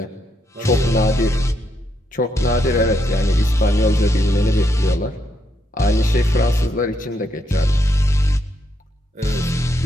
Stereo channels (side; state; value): both; normal; correlation 0.78